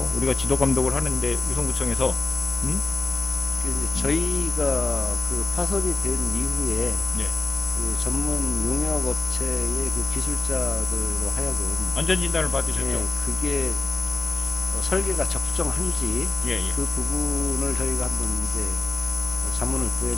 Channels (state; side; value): quieter; right; 3.9 dB